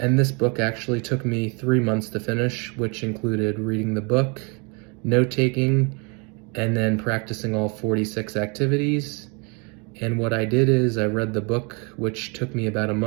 this book actually took me 3 months to finish, which included reading the book, note-taking, and then practicing all 46 activities. And what I did is I read the book, which took me about a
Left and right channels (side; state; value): left; quieter; 32.5 dB